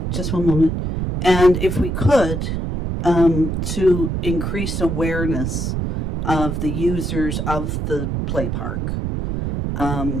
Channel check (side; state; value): right; noise; rumble, 2 dB below the sound